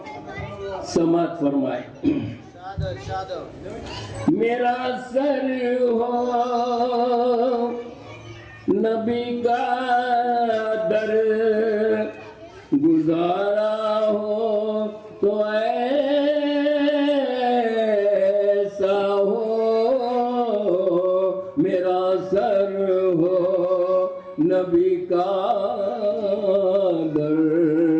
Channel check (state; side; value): identical; both; correlation 1.00